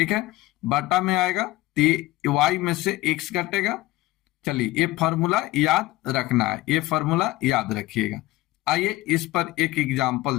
है, बटा में आएगा तो y में से x घटेगा। चलिए ये फॉर्मूला याद रखना है, ये फॉर्मूला याद रखिएगा। आइए इस पर एक एग्जांपल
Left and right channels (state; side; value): quieter; right; 18.6 dB